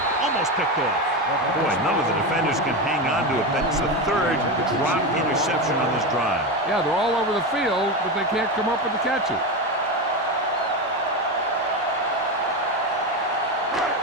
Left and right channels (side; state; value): both; normal; correlation 0.17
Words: Almost picked off. Boy, none of the defenders can hang on to it. That's the 3rd drop interception on this drive. Yeah, they're all over the field, but they can't come up with the catch it.